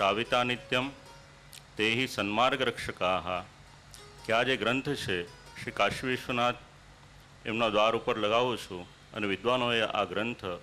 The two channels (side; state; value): both; identical; correlation 1.00